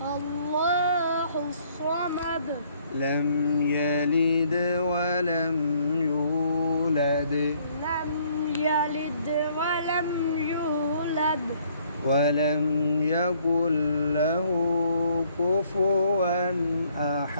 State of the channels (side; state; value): both; inverted; correlation -0.64